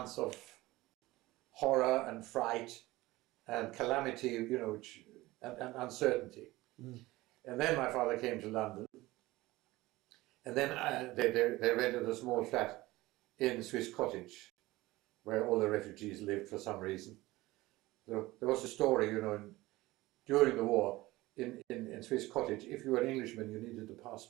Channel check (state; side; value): quieter; left; 19.1 dB